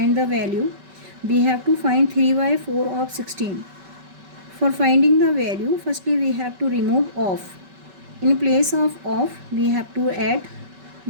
the value. We have to find 3 by 4 of 16. For finding the value, firstly we have to remove off. In place of off, we have to add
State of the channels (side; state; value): left; late; 5.2 ms